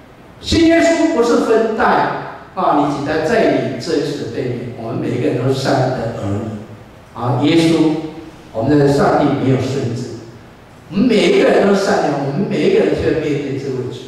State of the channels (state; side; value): identical; both; correlation 1.00